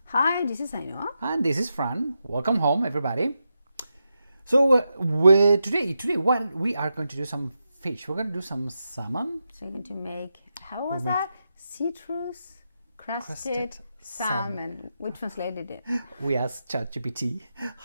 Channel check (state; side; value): inverted; both; correlation -0.87